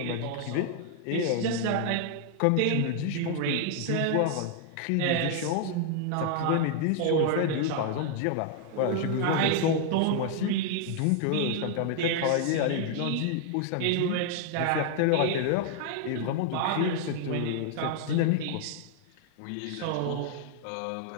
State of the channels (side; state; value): both; different; correlation 0.00